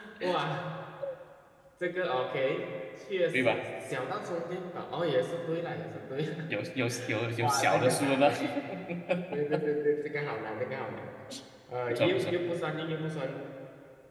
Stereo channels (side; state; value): both; identical; correlation 1.00